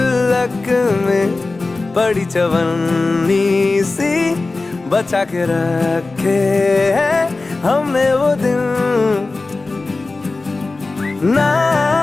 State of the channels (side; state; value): right; quieter; 3.5 dB